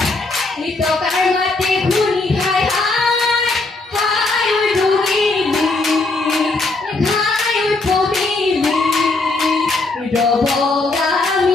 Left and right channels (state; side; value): quieter; right; 3.3 dB